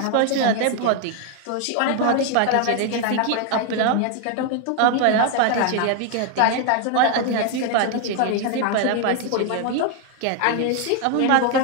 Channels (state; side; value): different; both; correlation 0.00